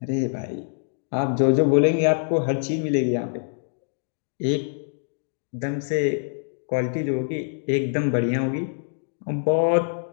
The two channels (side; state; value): right; silent; digital silence